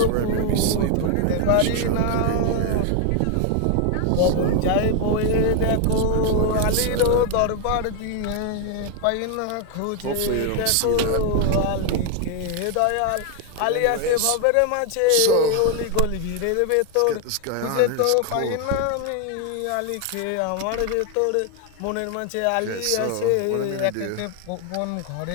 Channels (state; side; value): different; both; correlation 0.00